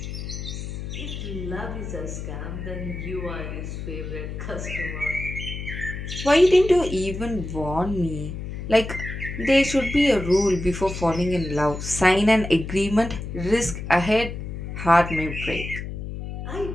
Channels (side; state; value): left; noise; hum, 7 dB below the sound